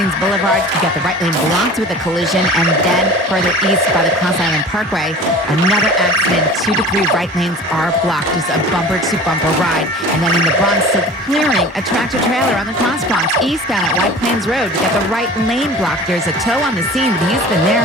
Boulevard, you got the right lane blocked with a collision, and then further east by the Cross Island Parkway, another accident. 2 to 3 right lanes are blocked. Just a bumper-to-bumper ride. And then in the Bronx, still clearing a tractor-trailer on the Cross Bronx eastbound at White Plains Road. You got the right lane blocked. There's a tow on the scene, but he's been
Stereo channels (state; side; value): normal; both; correlation 0.40